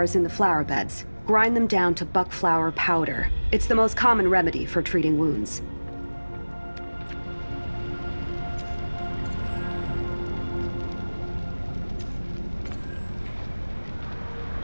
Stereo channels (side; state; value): both; inverted; correlation -1.00